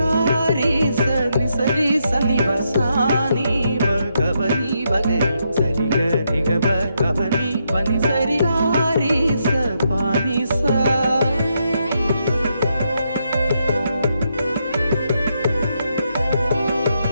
சனி சரி சனி வசானி கபனி வகரி சரி கரி கப கபனி பனி சரி காரி ச பானி சா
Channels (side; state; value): both; inverted; correlation -0.80